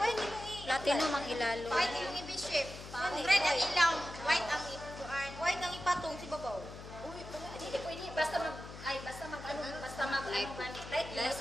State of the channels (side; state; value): left; noise; hum, 13 dB below the sound